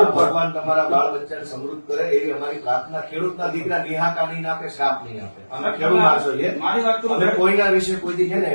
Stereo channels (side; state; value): both; inverted; correlation -1.00